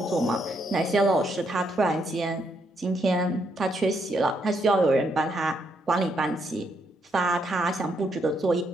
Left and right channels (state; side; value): normal; both; correlation 0.76